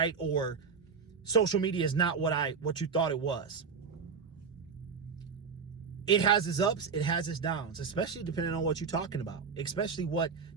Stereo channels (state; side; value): quieter; left; 5.6 dB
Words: Or social media is not what you thought it was. It has its ups, it has its downs, especially depending on what you're talking about,